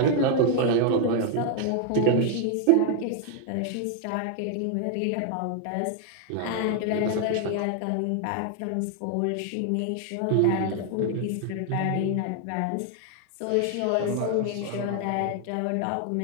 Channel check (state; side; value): different; both; correlation 0.00